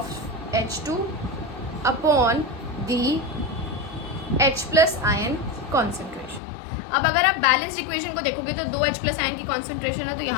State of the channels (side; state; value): right; drops out; at 6.4 s